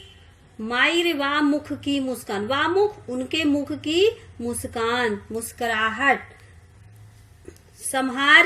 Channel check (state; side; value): identical; both; correlation 1.00